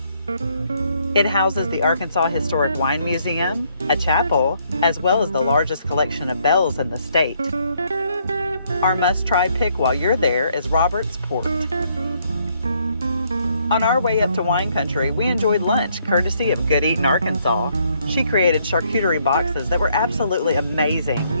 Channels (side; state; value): both; inverted; correlation -0.70